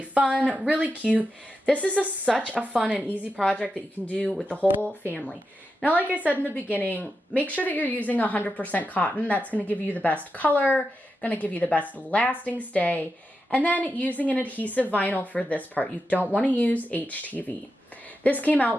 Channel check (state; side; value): normal; both; correlation 0.88